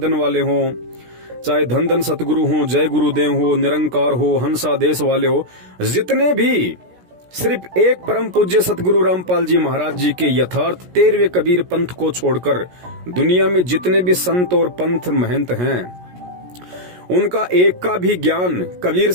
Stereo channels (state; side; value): late; left; 17 ms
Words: वाले हो, चाहे धन धन सतगुरु हो, जय गुरुदेव हो, निरंकार हो, हंसा देश वाले हो, जितने भी सिर्फ एक परम पूज्य सतगुरु रामपाल जी महाराज जी के यथार्थ 13वें कबीर पंथ को छोड़कर दुनिया में जितने भी संत और पंथ महंत हैं, उनका एक का भी ज्ञान कबीर